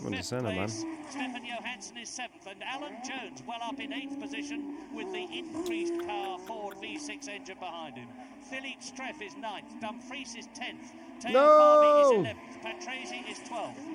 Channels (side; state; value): both; identical; correlation 1.00